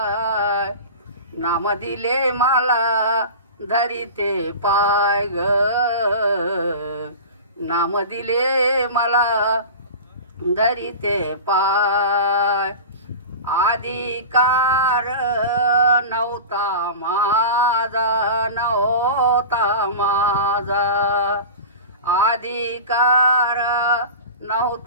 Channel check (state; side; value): inverted; both; correlation -0.31